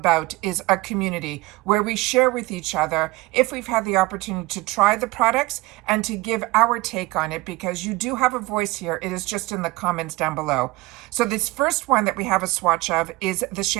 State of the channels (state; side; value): quieter; left; 20.5 dB